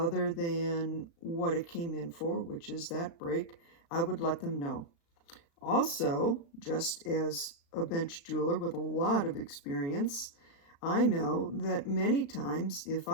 than what it came in for, which is that break, I would let them know. Also, just as a bench jeweler with a lot of experience, I know that many times if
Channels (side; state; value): right; late; 36 ms